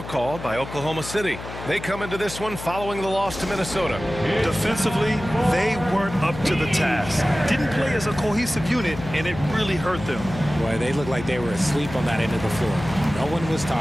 called by Oklahoma City. They come into this one following the loss to Minnesota. Defensively, they weren't up to the task. Didn't play as a cohesive unit, and it really hurt them. Boy, they looked like they were asleep on that end of the floor. No one was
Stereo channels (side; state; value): left; noise; hum, 11 dB below the sound